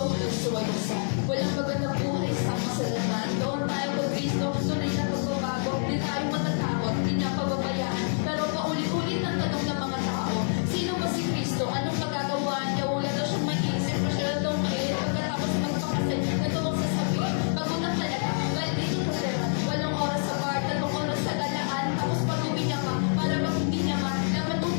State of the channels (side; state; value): right; silent; digital silence